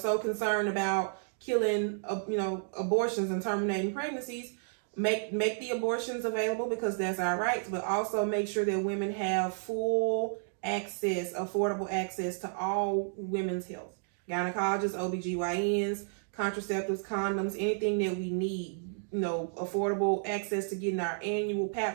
concerned about killing, abortions and terminating pregnancies, make the abortions available because that's our rights, but also make sure that women have full access, affordable access to all women's health. Gynecologists, OBGYNs, contraceptives, condoms, anything that we need, affordable access to getting our annual pap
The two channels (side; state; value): left; silent; digital silence